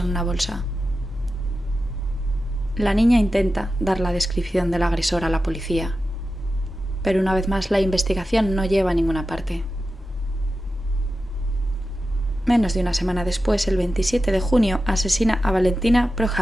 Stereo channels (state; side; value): normal; both; correlation 0.92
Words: una bolsa. La niña intenta dar la descripción del agresor a la policía, pero una vez más la investigación no lleva a ninguna parte. Menos de una semana después, el 27 de junio, asesina a Valentina